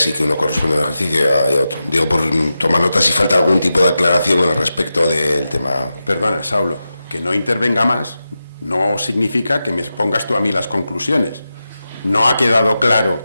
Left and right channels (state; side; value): inverted; both; correlation -0.91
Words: y que uno corresponde a un ejercicio y a otro. Digo, por tomar nota si falta algún tipo de aclaración con respecto del tema. Perdona, Saulo, que no intervenga más no significa que me pongas tú a mí las conclusiones. No ha quedado claro